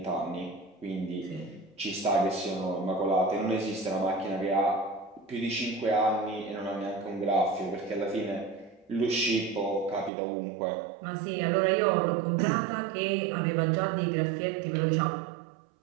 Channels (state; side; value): drops out; left; at 10.1 s